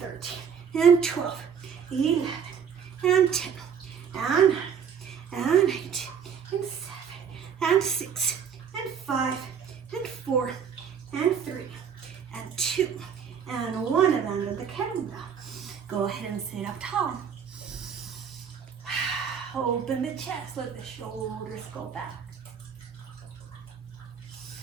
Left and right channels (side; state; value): left; quieter; 7.3 dB